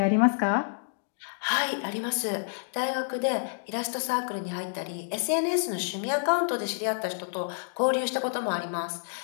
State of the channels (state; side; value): silent; right; digital silence